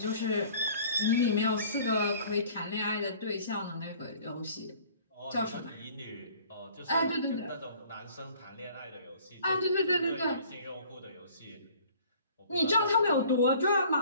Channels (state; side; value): inverted; both; correlation -0.52